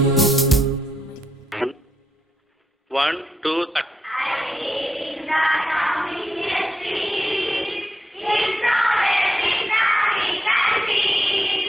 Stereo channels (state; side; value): normal; both; correlation 0.83